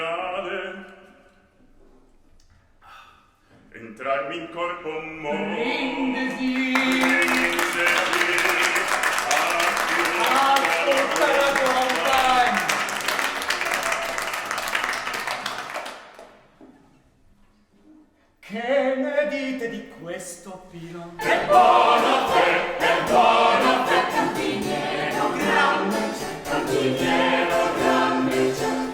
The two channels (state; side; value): identical; both; correlation 1.00